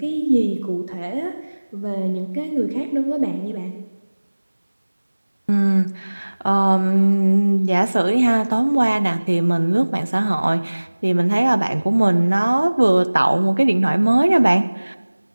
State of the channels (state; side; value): inverted; both; correlation -1.00